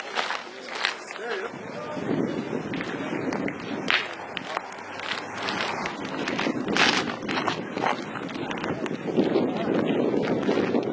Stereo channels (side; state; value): both; identical; correlation 1.00